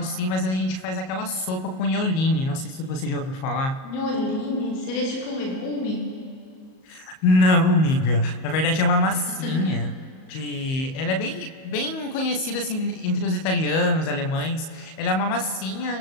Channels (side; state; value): right; late; 38 ms